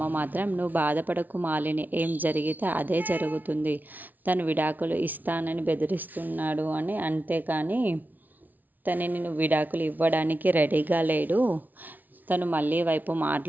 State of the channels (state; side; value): late; left; 0.081 ms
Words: మాత్రం, నువ్వు బాధపడకు మాలిని, ఏం జరిగితే అదే జరుగుతుంది, తను విడాకులు ఇస్తానని బెదిరిస్తున్నాడు అని, అంతేకాని తనని నువ్వు విడాకులు ఇవ్వడానికి రెడీగా లేడు, తను మళ్ళీ వైపు